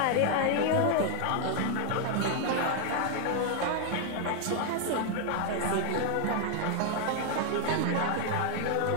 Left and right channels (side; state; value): both; different; correlation 0.00